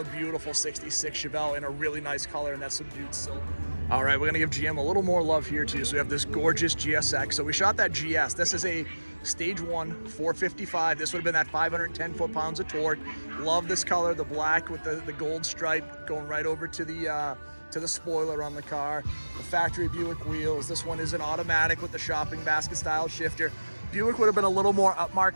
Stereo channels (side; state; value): both; inverted; correlation -1.00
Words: beautiful 66 Chevelle in a really nice color, and that subdued silver. All right, we're gonna give GM a little more love here too. So we have this gorgeous GSX. So we shot that GS. This is a stage 1 455. This would have been that 510 foot-pounds of torque. Love this color, the black with the gold stripe going right over to the spoiler on the car. The factory Buick wheels. This one is an automatic with the shopping basket style shifter. Buick would have been a little more